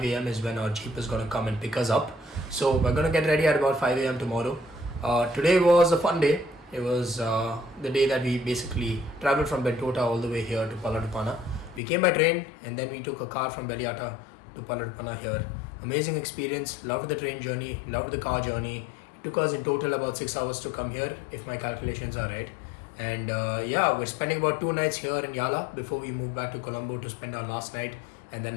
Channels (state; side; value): drops out; right; at 11.8 s